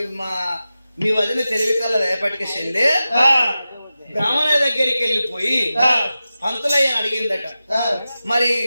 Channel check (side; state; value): both; inverted; correlation -0.94